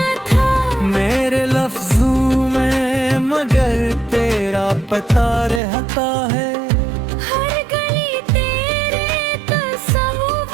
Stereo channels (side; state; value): left; drops out; at 5.6 s